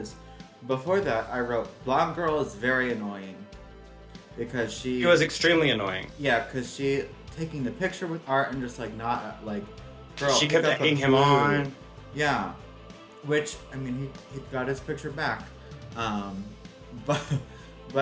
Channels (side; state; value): both; identical; correlation 1.00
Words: before that, I wrote, blonde girl is very annoying. Because she... She was extremely annoying. Yeah, because she taking the picture with Art and just, like, not, like... Girl, she kept egging him on. Yeah. Which, I mean, he got his picture back.